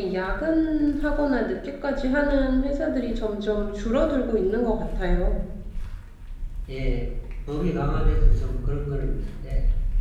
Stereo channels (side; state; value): both; identical; correlation 1.00